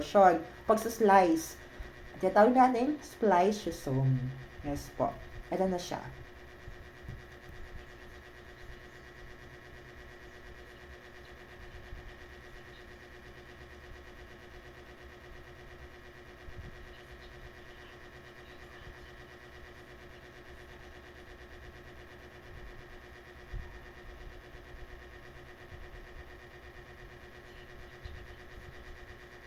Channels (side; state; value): both; identical; correlation 1.00